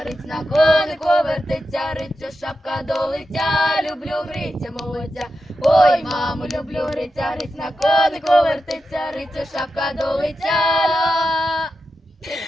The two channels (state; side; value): normal; both; correlation 0.89